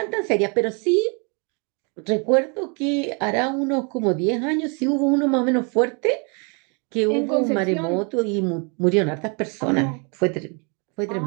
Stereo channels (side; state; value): left; quieter; 34.5 dB